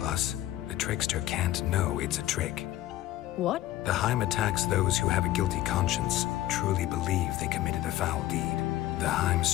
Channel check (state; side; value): quieter; right; 14.5 dB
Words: the trickster can't know it's a trick. What? The Heim attacks those who have a guilty conscience, truly believe they committed a foul deed. The Heim